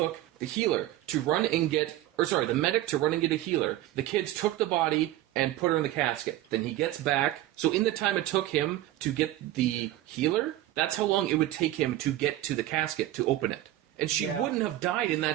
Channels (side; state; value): left; quieter; 14.7 dB